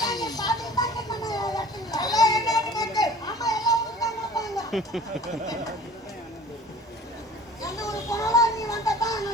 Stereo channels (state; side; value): normal; both; correlation 0.45